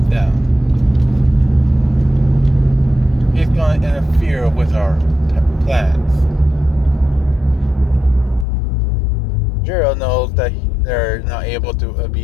down. He's going to interfere with our plans. Jiro knows that they're not able to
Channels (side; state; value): right; drops out; at 8.5 s